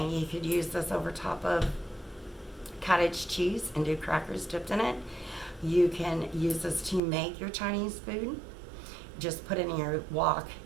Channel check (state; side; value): drops out; left; at 7.0 s